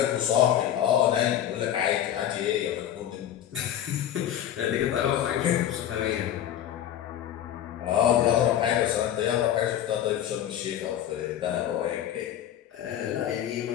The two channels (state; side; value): quieter; right; 10.9 dB